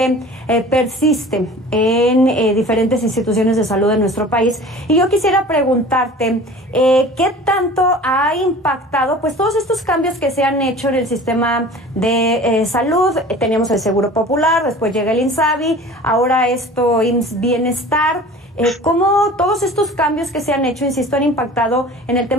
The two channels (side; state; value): both; normal; correlation 0.42